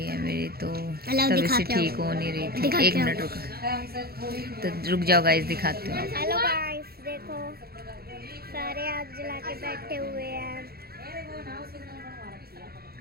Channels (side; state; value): left; late; 0.45 ms